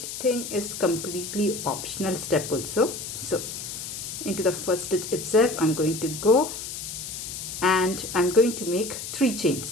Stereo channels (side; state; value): left; noise; hiss, 7 dB below the sound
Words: thing is completely optional step also. So into the first stitch itself I'm going to go and I'm going to make 3 chain